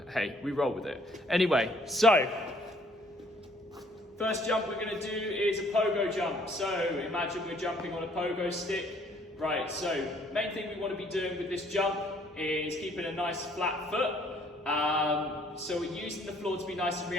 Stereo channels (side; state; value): both; normal; correlation 0.61